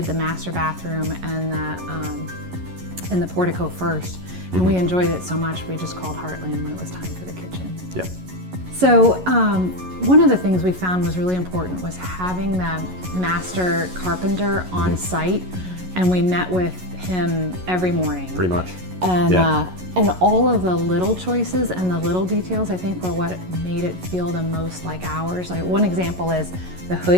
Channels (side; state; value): left; late; 11 ms